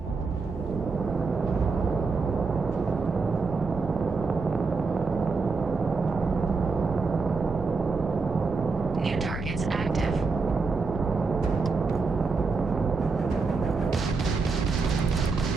New targets active.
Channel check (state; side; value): quieter; left; 4.4 dB